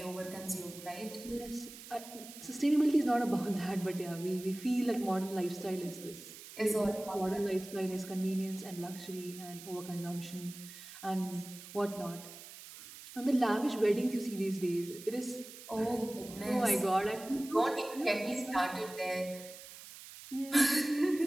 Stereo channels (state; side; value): noise; right; hiss, 15 dB below the sound